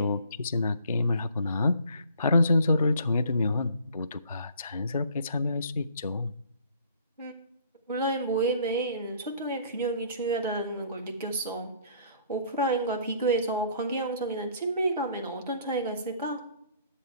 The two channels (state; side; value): inverted; both; correlation -0.57